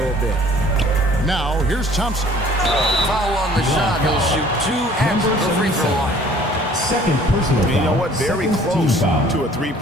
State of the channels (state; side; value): normal; both; correlation 0.53